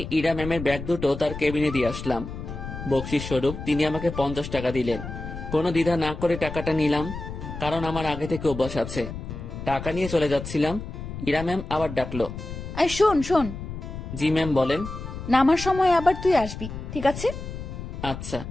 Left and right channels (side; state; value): left; noise; rumble, 9 dB below the sound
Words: ইরা ম্যামের ব্যাগ দুটো তার কেবিনে দিয়ে আসলাম। বকশিস স্বরূপ তিনি আমাকে 50 টাকা দিলেন। কোনো দ্বিধা না করে টাকাটা নিলাম, কারণ আমার আগে থেকে অভ্যাস আছে। টাকা নিয়ে চলে যাচ্ছিলাম, ইরা ম্যাম আবার ডাকলো। আর শোন শোন, জি ম্যাম বলেন। নামার সময় আবার তুই আসবি, ঠিক আছে? আচ্ছা।